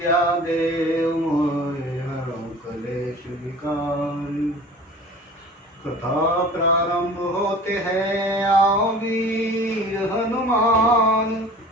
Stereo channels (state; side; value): normal; both; correlation 0.42